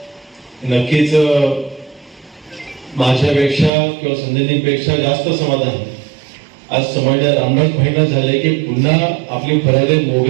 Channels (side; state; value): left; drops out; at 3.7 s